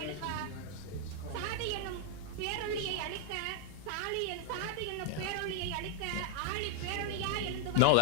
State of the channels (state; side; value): different; both; correlation -0.01